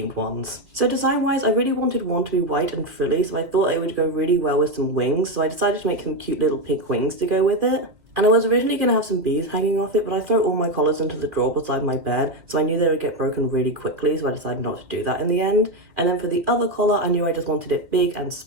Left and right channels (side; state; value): left; late; 2.2 ms